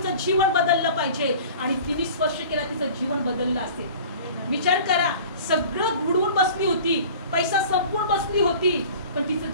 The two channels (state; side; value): inverted; both; correlation -0.43